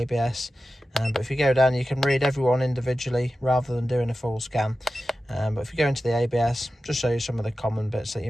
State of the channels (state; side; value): normal; both; correlation 0.93